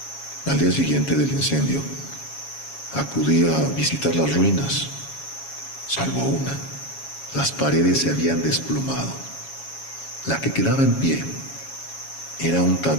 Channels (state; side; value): late; right; 7.2 ms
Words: Al día siguiente del incendio, acudí a visitar las ruinas. Salvo una, las paredes se habían desplomado. La que quedaba en pie era un